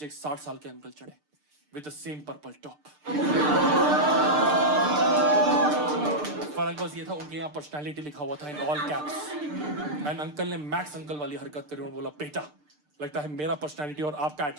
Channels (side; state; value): left; late; 6.7 ms